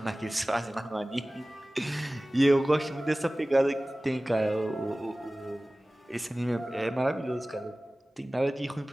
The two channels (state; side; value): normal; both; correlation 0.98